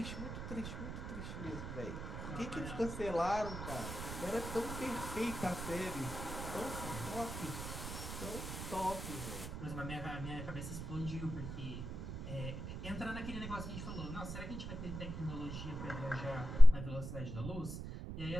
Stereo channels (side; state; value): right; noise; rumble, 7 dB below the sound